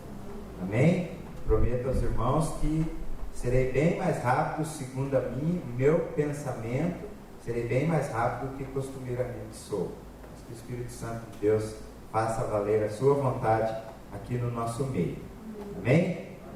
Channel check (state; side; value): identical; both; correlation 1.00